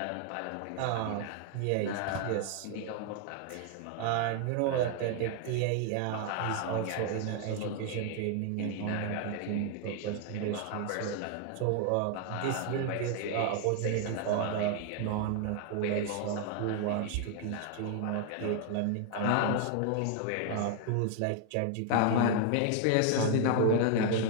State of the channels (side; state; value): both; different; correlation 0.00